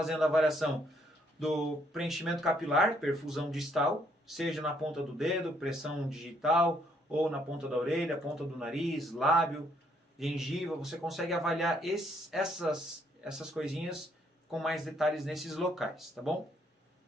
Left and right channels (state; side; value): normal; both; correlation 0.69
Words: a avaliação do preenchimento capilar, perfusão distal, seja na ponta do dedo, pressão digital, ou na ponta da orelha, ponta do nariz, lábio, gengiva. Você consegue avaliar essas coisinhas com mais detalhes nesses locais, tá bom?